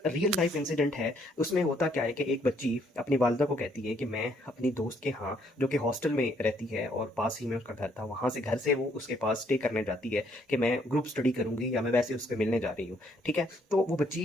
रियल लाइफ इंसिडेंट है। उसमें होता क्या है कि एक बच्ची अपनी वालदा को कहती है कि मैं अपनी दोस्त के यहाँ, जो कि हॉस्टल में रहती है और पास ही में उसका घर था, वहाँ से घर से वो उसके पास स्टे करने जाती है कि मैं ग्रुप स्टडी करूँगी या मैं वैसे उससे मिलने जा रही हूँ। ठीक है, तो वो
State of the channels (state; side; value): normal; both; correlation 0.68